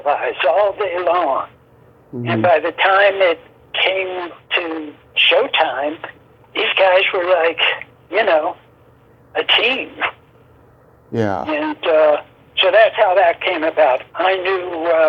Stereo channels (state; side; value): identical; both; correlation 1.00